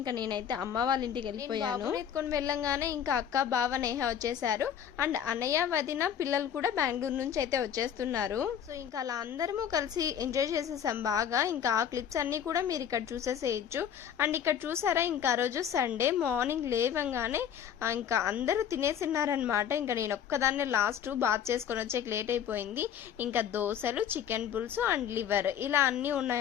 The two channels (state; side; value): quieter; right; 8.9 dB